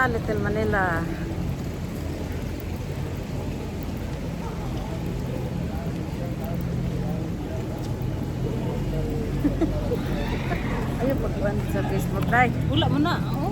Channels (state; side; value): identical; both; correlation 1.00